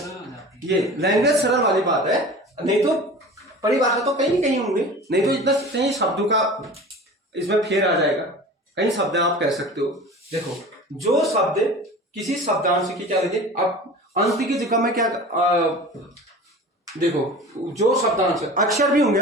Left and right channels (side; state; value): both; normal; correlation 0.38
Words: हो जाती है। ये लैंग्वेज सरल वाली बात है, नहीं तो परिभाषा तो कहीं कहीं होंगे, नहीं तो इतना कहीं शब्दों का इसमें फेर आ जाएगा। कई शब्द आप कह सकते हो। देखो, जो शब्द किसी शब्दांश की क्या लगे, अब अंत की जगह में क्या देखो, जो शब्दांश अक्षर भी होंगे,